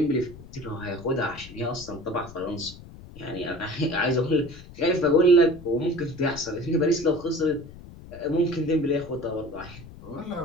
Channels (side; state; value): left; noise; rumble, 17 dB below the sound